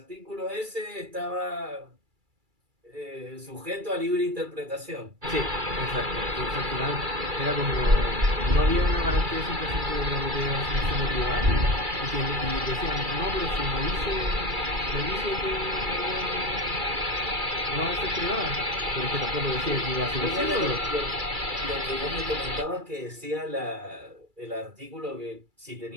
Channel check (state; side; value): late; left; 2.3 ms